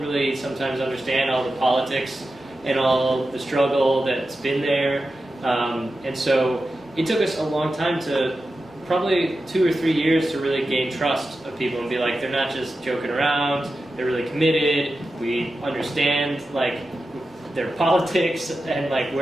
really sometimes understand all the politics and all the struggle that's been there. And so it took us a long time to, probably 2 or 3 years, to really gain trust of people and be like, they're not just joking around, they're really committed, we understand like their politics and like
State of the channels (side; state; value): both; normal; correlation 0.92